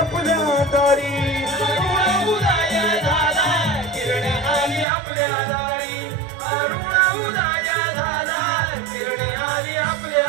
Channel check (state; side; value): drops out; left; at 4.9 s